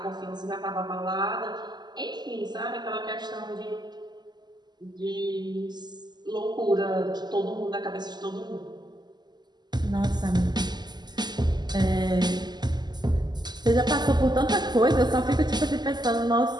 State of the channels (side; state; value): left; late; 0.21 ms